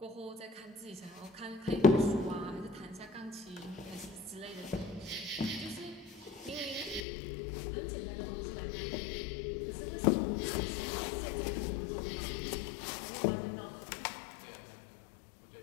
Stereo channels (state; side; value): drops out; right; at 7.1 s